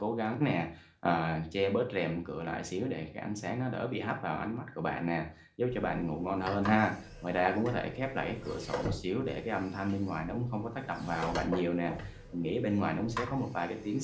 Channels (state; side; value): identical; both; correlation 1.00